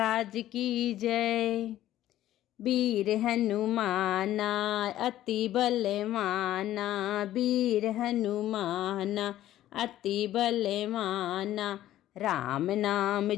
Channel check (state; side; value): quieter; right; 13.4 dB